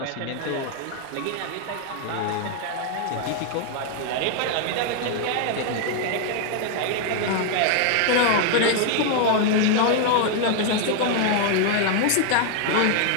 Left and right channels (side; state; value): both; different; correlation 0.00